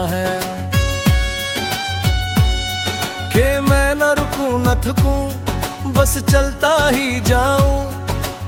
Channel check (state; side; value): identical; both; correlation 1.00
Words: है कि मैं न रुकूं न थकूं, बस चलता ही जाऊं।